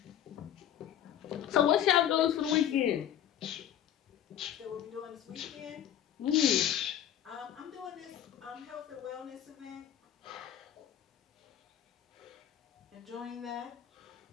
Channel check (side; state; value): right; quieter; 10.6 dB